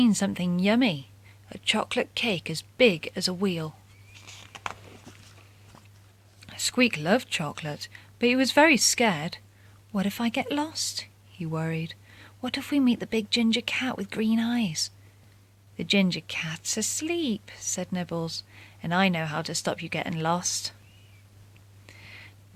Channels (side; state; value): both; identical; correlation 1.00